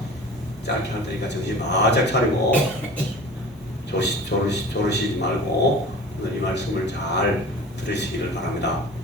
짧게 할 테니까 정신 바짝 차리고 조르시지 말고 오늘 이 말씀을 잘 들으시기를 바랍니다.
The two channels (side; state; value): both; normal; correlation 0.39